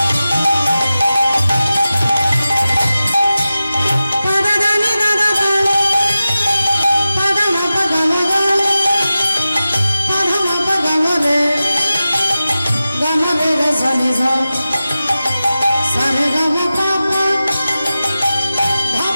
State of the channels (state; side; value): inverted; both; correlation -0.94